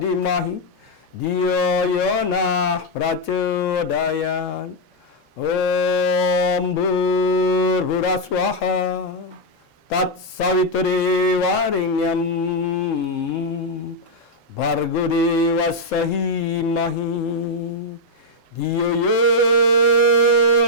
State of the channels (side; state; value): both; normal; correlation -0.01